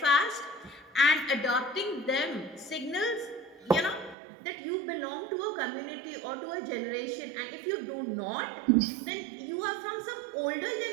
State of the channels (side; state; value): left; drops out; at 4.2 s